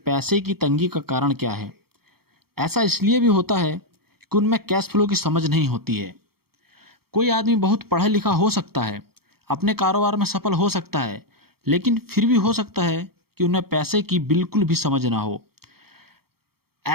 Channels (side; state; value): left; late; 0.95 ms